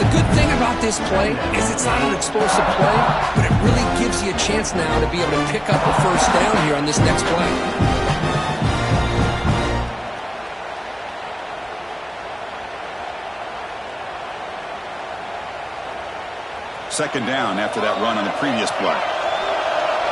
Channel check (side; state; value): both; identical; correlation 1.00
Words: good thing about this play is it's not an explosive play, but it really gives you a chance now to be able to pick up a first down here on this next play. Second down after that run on the previous play.